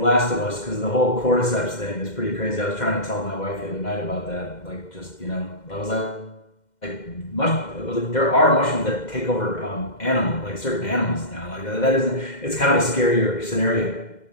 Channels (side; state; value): right; late; 2.1 ms